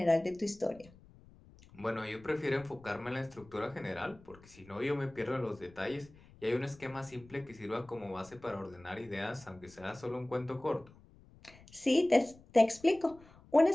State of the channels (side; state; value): left; noise; rumble, 24 dB below the sound